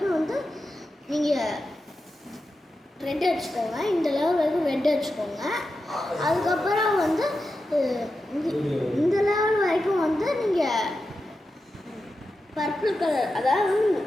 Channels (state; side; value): normal; both; correlation 0.90